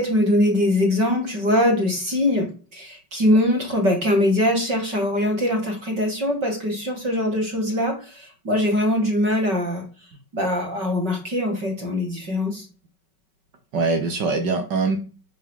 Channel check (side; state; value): left; late; 5.3 ms